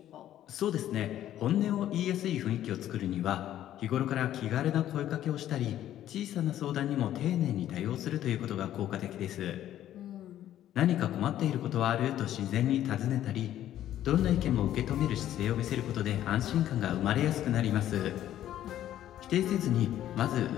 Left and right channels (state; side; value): quieter; right; 12.1 dB